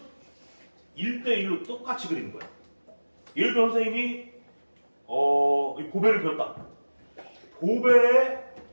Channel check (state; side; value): inverted; both; correlation -1.00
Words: 1대1로 똑같이 그리는 거예요. 예를 들어 선생님이 이 보배를 그렸다. 보배의